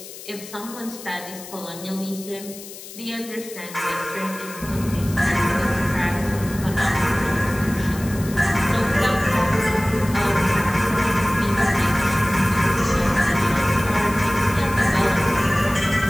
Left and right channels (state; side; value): noise; left; hiss, 15 dB below the sound